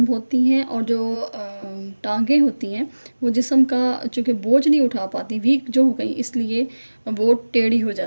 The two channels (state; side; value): inverted; both; correlation -1.00